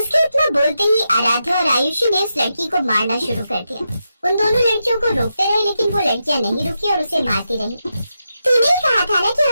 इतना बोलते ही आराध्या और आयुषी ने उस लड़की को मारना शुरू कर दिया। उन दोनों लड़कियों को रोकते रहे, लेकिन वो लड़कियां नहीं रुकी और उसे मारती रही। तूने कहा था ना कि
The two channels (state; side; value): inverted; both; correlation -0.87